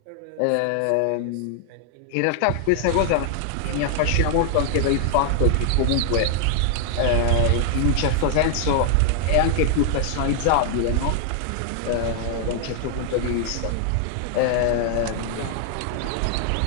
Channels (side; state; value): both; different; correlation 0.00